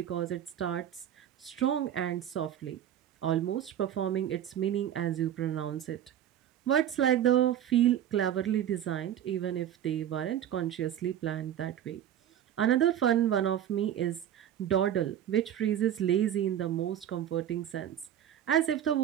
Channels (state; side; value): quieter; left; 10.6 dB